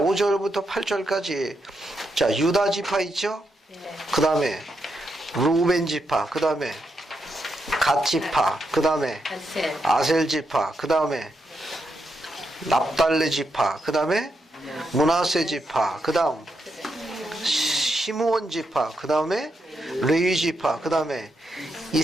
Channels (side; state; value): both; normal; correlation 0.83